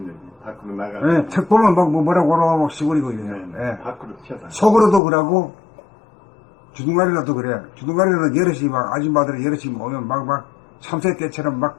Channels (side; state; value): right; drops out; at 5.0 s